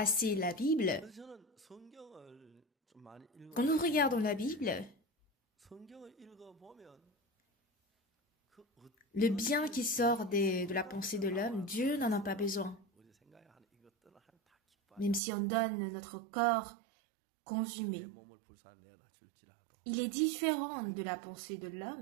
la Bible. Quand nous regardons la Bible, le bien qui sort de la pensée de l'homme, Dieu n'en a pas besoin. Même si on donne notre corps consumé. Il est différent de la pensée de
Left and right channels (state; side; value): drops out; left; at 15.2 s